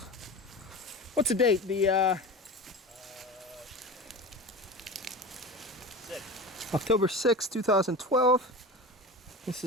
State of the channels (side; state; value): both; normal; correlation 0.31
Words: What's the date? The October 6, 2012. This